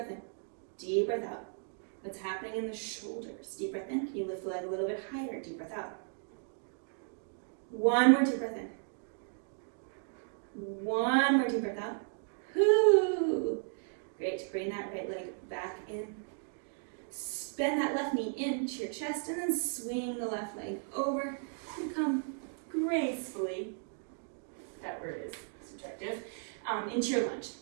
in, deep breath out. What's happening in the shoulders? Deep breath in, can you lift the leg a little bit higher? Deep breath out. 1 more deep breath in. 1 more deep breath out. Whoo! Great, bring that right leg back in. Bend that left knee into your chest and then swing the left leg over and come gracefully, that word is subjective, into your lunge.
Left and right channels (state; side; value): silent; left; 54 dB below the other